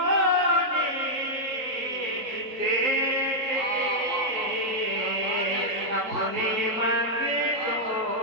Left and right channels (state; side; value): late; left; 3.8 ms